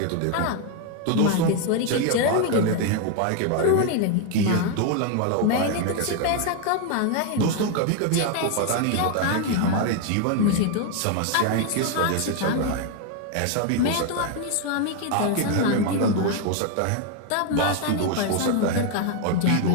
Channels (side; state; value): both; different; correlation 0.01